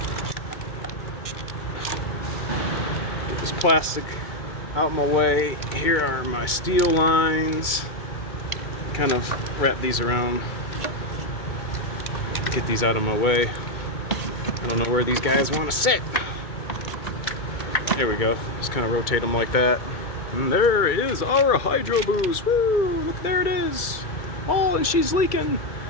Get this plastic out my way. Here are my steel lines. Kind of wrap these around. Get these out of my way. I don't know where these guys want to sit. There we go. Just kind of rotate them like that. And there is our HydroBoost. Woo! Look, there it is. Oh, and she's leaking.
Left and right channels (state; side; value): late; right; 2.2 ms